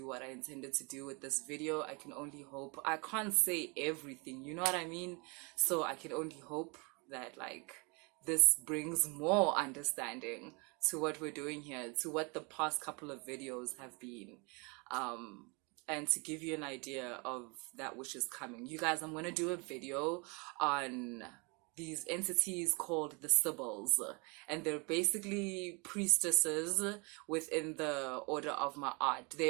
what I intended to do with this video. I can only hope. I can't say everything, you know what I mean? So I can only hope that, like, this brings more understanding to what we're doing here, to what the past couple of videos have been, and to give you an idea of that which is coming. You guys, I'm going to do a video on these entities called the Sibyls, and they're basically priestesses within the order of Ma'at.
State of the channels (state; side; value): quieter; left; 30.9 dB